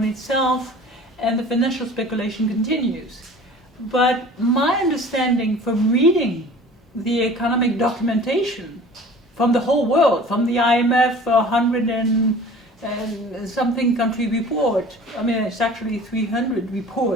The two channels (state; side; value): normal; both; correlation 0.44